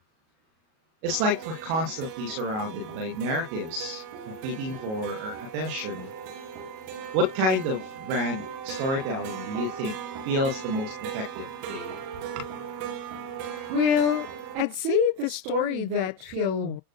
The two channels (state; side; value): late; left; 37 ms